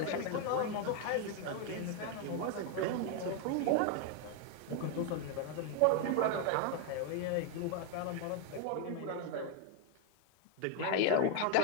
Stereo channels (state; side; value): different; both; correlation 0.01